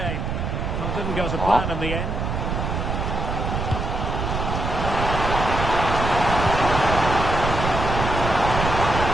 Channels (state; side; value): noise; right; rumble, 2 dB below the sound